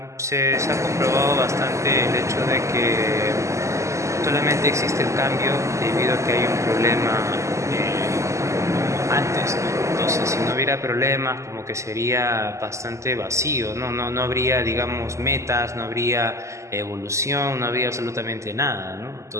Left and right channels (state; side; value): late; left; 0.14 ms